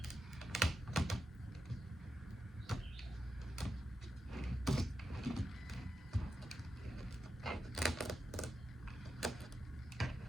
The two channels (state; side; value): normal; both; correlation 0.88